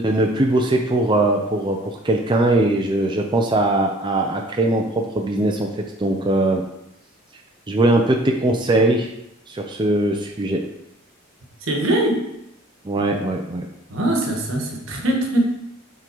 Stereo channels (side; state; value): both; normal; correlation 0.54